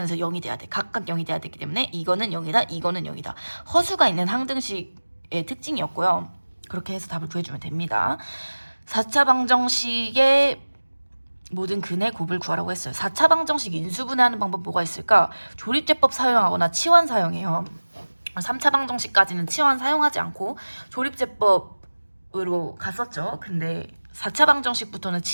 0이 돼야 돼. 각각 0이 돼야 되기 때문에 이거는 0이다, 이거는 0이다. 허수가 있는 항등식의 특징이었고요. 그렇게 해서 답을 구해주면 됩니다. 4차 방정식의 모든 근의 곱을 구하라고 했어요. 4차 방정식 인수분해하는 방법 뭐가 있을까? 조립제법 사용하거나 치환 사용해요. 3차 방정식까지는 치환 사용하지 않고 조립제법으로 갔었죠. 근데 4차 방정식부터는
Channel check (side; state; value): both; inverted; correlation -1.00